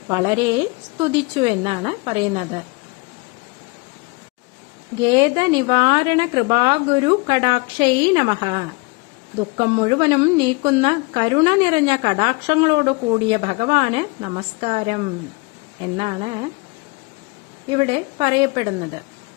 വളരെ സ്തുതിച്ചു എന്നാണ് പറയുന്നത്. ഗേദ നിവാരണ കൃപാഗുരു കടാക്ഷൈ നമഃ. ദുഃഖം മുഴുവനും നീക്കുന്ന കരുണ നിറഞ്ഞ കടാക്ഷങ്ങളോട് കൂടിയ ഭഗവാന് നമസ്കാരം എന്നാണ് ഇവിടെ പറയപ്പെടുന്നത്.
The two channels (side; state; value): right; quieter; 28.3 dB